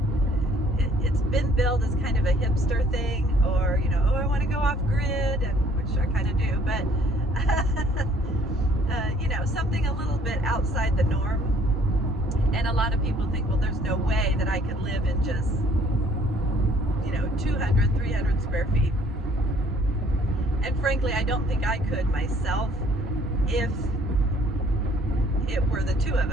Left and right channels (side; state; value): both; normal; correlation 0.59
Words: it's been billed as kind of a hipster thing, or, oh, I want to go off grid, and which I kind of do, but, something a little bit outside the norm. And a lot of people think, well, there's no way that I could live in just, 200, 300 square feet. And frankly, I don't think I could myself if it were the two of